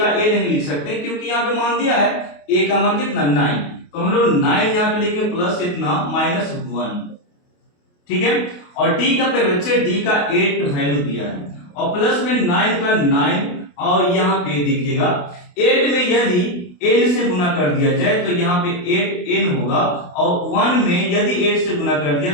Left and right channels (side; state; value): right; late; 28 ms